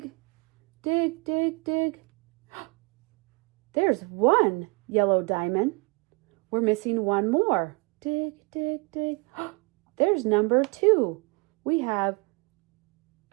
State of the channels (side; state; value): left; quieter; 29.3 dB